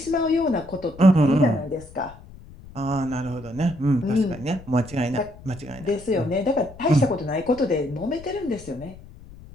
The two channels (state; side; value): noise; left; rumble, 19 dB below the sound